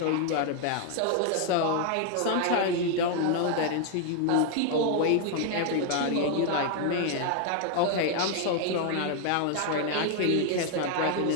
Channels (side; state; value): both; different; correlation 0.00